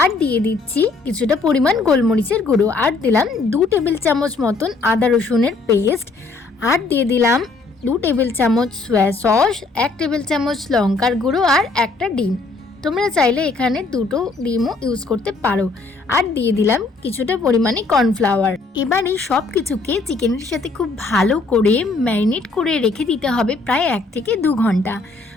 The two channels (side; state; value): right; quieter; 3.7 dB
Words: আর দিয়ে দিচ্ছি কিছুটা পরিমাণ গোলমরিচের গুঁড়ো, আর দিলাম 2 টেবিল চামচ মতন আদা রসুনের পেস্ট, আর দিয়ে দিলাম 2 টেবিল চামচ সয়া সস, 1 টেবিল চামচ লঙ্কার গুঁড়ো, আর একটা ডিম। তোমরা চাইলে এখানে 2টো ডিমও ইউজ করতে পারো। আর দিয়ে দিলাম কিছুটা পরিমাণে কর্নফ্লাওয়ার। এবার এই সব কিছুকে চিকেনের সাথে খুব ভালো করে ম্যারিনেট করে রেখে দিতে হবে প্রায় 1 থেকে 2 ঘন্টা।